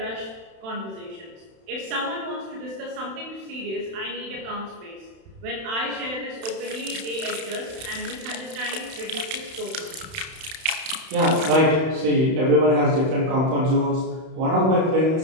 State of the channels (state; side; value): late; left; 31 ms